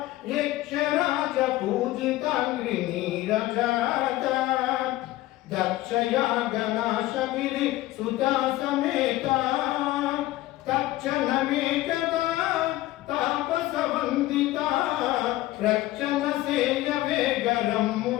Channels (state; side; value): quieter; right; 16.6 dB